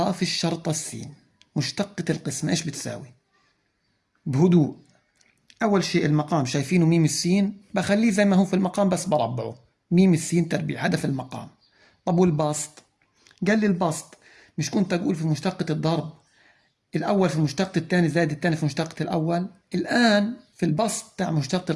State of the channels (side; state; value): both; identical; correlation 1.00